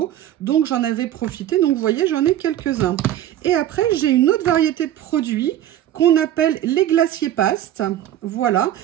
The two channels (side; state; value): left; quieter; 12.0 dB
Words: donc j'en avais profité. Donc, vous voyez, j'en ai quelques-uns. Et après, j'ai une autre variété de produits qu'on appelle les glaciers pastes. Voilà,